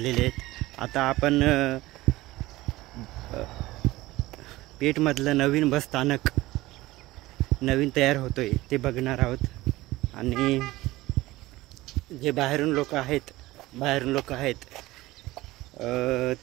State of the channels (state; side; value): quieter; left; 18.4 dB